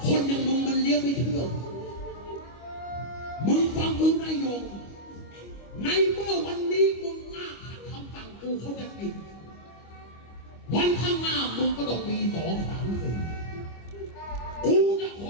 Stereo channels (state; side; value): late; right; 25 ms